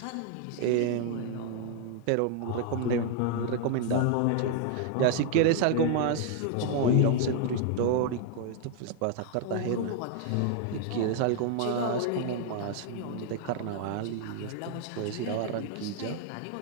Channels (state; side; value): different; both; correlation 0.00